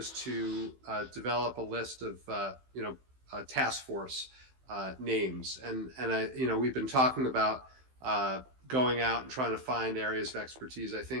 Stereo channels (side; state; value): left; late; 15 ms